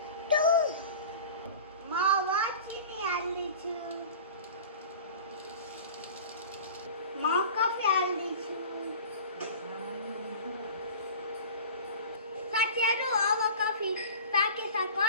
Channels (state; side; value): inverted; both; correlation -0.39